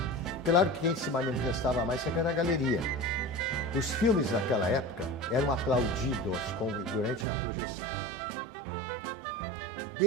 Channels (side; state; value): left; drops out; at 7.2 s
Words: Claro que quem se manifestava mais sempre era a galeria. Os filmes naquela época eram aplaudidos durante a projeção.